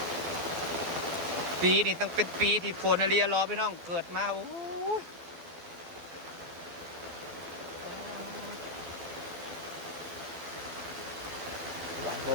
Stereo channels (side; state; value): left; late; 12 ms